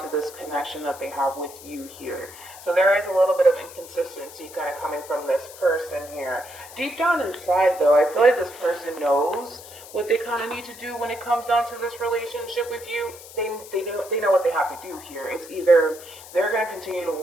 this connection that they have with you here. So there is a little bit of inconsistency kind of coming from this person here. Deep down inside, though, I feel like this person knows what they kind of need to do when it comes down to this relationship with you. They know what they have to do here. It's either they're going to continue to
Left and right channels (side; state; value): left; noise; hiss, 17 dB below the sound